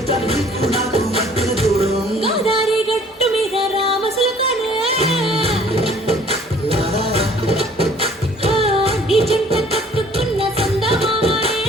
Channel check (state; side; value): normal; both; correlation 0.55